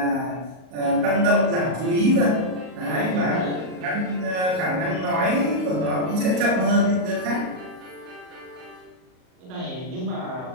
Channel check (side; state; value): left; late; 38 ms